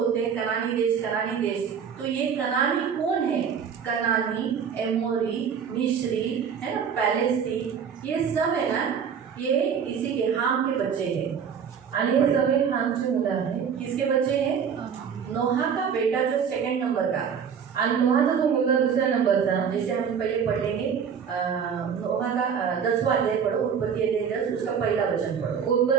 हैं, कनानी देश, तो ये कनानी कौन है? कनानी, एमोरी, मिस्री, है ना, पैलेस्टी, ये सब है ना, ये इसी के हाम के बच्चे हैं. आणि हे सगळे हामची मुलं आहेत. किसके बच्चे हैं? नोहा का बेटा जो 2nd नंबर का, आणि नोहाचा जो मुलगा 2ऱ्या नंबरचा, जैसे हम पहले पढ़ लेंगे. नोहा का 10वां अध्याय पढ़ो, उत्पत्ति अध्याय 10, उसका पहला वचन पढ़ो.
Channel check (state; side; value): quieter; left; 7.2 dB